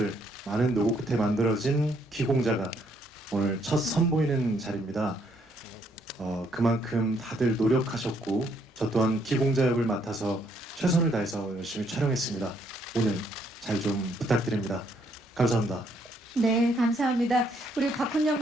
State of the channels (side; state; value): both; normal; correlation 0.70